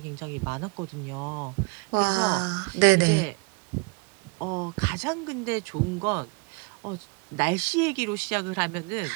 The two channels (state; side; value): quieter; left; 32.2 dB